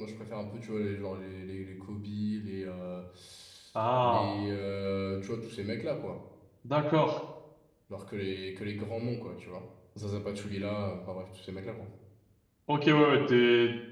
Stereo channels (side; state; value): both; identical; correlation 1.00